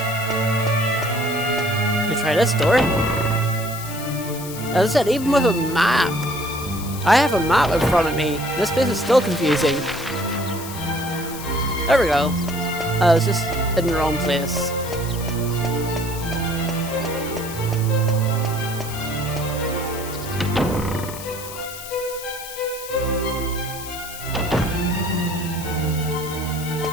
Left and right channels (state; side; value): noise; left; hiss, 12 dB below the sound